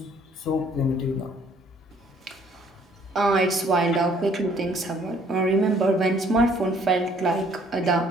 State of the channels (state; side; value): normal; both; correlation 0.61